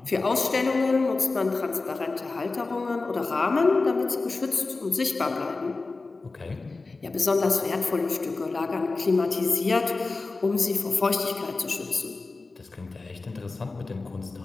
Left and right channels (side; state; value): right; quieter; 3.7 dB